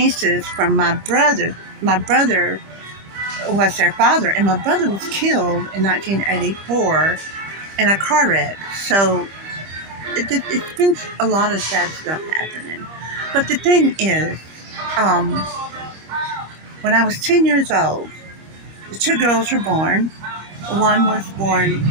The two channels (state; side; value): late; left; 25 ms